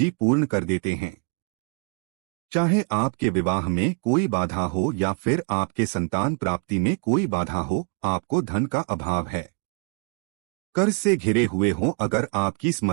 पूर्ण कर देते हैं। चाहे आपके विवाह में कोई बाधा हो या फिर आपके संतान प्राप्ति में कोई बाधा हो, आपको धन का अभाव है, कर्ज से घिरे हुए हों, अगर आपकी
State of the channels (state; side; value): quieter; left; 38.3 dB